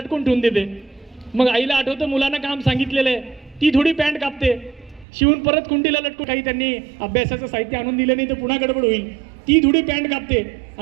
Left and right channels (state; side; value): drops out; left; at 5.1 s